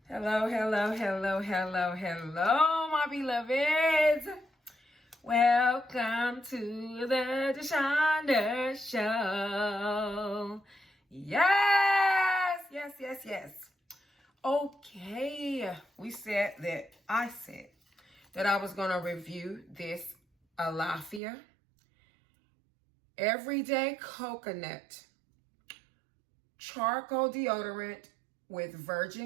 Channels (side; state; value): left; drops out; at 21.2 s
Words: Hello, hello, hello, hello, hello, my beloveds. Welcome to the Deshonda Show. Yes, yes, yes, yes. Okay, I said that I was going to review this Allafia Everyday Coconut Charcoal Deodorant with